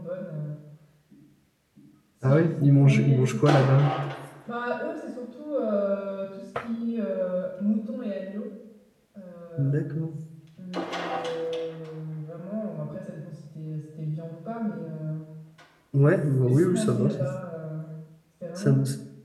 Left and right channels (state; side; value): identical; both; correlation 1.00